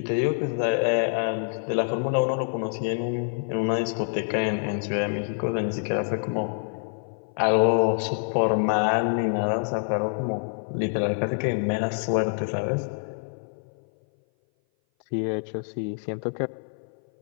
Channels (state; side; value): silent; right; 58 dB below the other